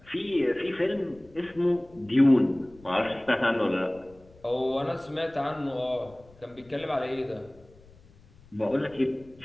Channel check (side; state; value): left; noise; rumble, 26 dB below the sound